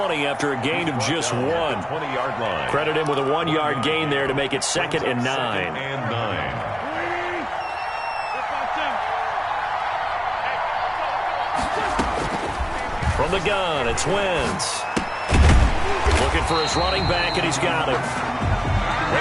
after a gain of just 1. 20-yard line. Credit him with a 1-yard gain there to make it 2nd and 9. From the gun, it's Wentz. Looking for his running back, and he's got it.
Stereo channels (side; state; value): both; identical; correlation 1.00